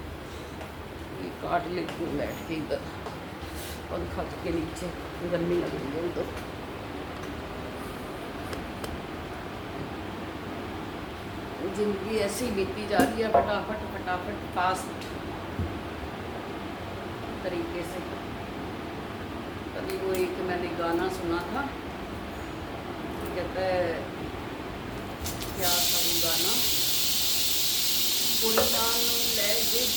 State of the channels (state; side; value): identical; both; correlation 1.00